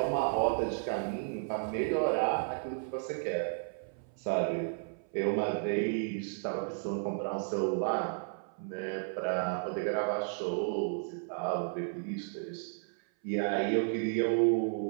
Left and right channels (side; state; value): left; silent; 56 dB below the other